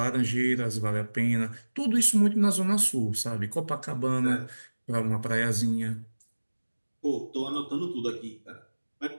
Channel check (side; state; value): both; inverted; correlation -1.00